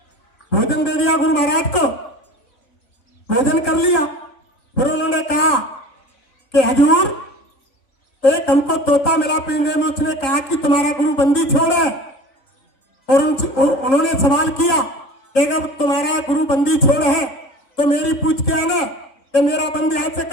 भोजन दे दिया गुरु महाराज को, भोजन कर लिया। फिर उन्होंने कहा कि हजूर एक हमको तोता मिला पिंजरे में, उसने कहा कि तुम्हारा गुरु बंदी छोड़े। और उन्होंने सवाल किया कि अगर तुम्हारा गुरु बंदी छोड़ है तो मेरी पूछ के आना कि मेरा बंदी हाथ से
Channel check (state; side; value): late; right; 3.7 ms